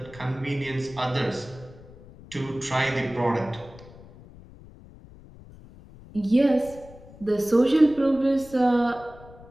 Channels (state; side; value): noise; left; rumble, 20 dB below the sound